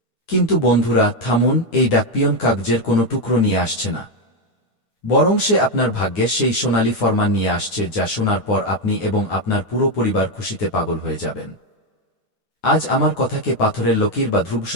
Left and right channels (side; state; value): right; late; 9.6 ms